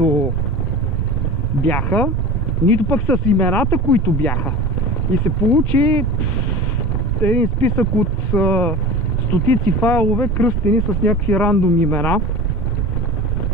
бяха, нито пък с имената, които бяха. И се получи един списък от стотици файлове, кръстени с някакви рандом имена.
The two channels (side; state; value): both; normal; correlation 0.34